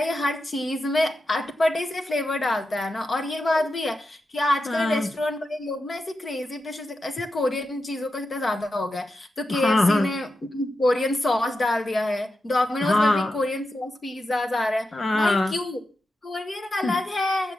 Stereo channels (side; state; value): both; normal; correlation 0.89